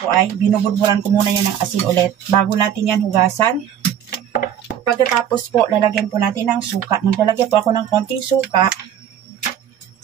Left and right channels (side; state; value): left; quieter; 9.7 dB